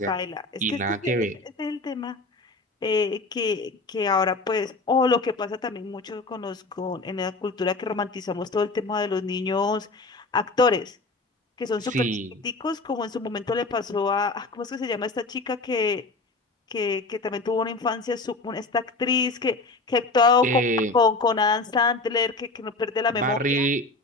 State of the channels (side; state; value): right; quieter; 3.4 dB